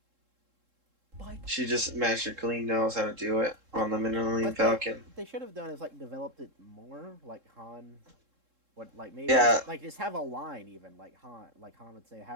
She just magically knows how to do it on the Millennium But Falcon. what they should have done is like developed it more, like Han. What like maybe Yeah. just have a line even like Han would say,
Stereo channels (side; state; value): left; late; 3.7 ms